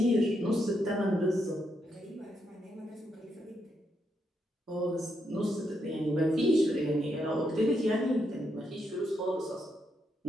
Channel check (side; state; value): both; normal; correlation 0.80